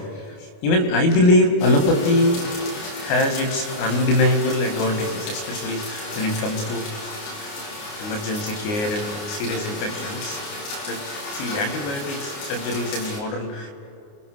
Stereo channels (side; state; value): right; late; 29 ms